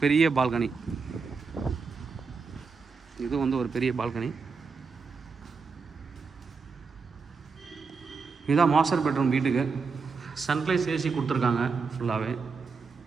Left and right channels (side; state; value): left; quieter; 5.0 dB